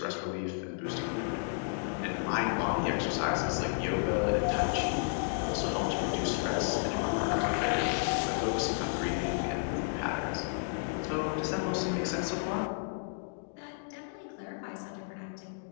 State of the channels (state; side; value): silent; right; digital silence